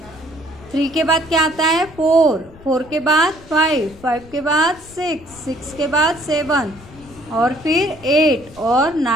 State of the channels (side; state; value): left; noise; rumble, 21 dB below the sound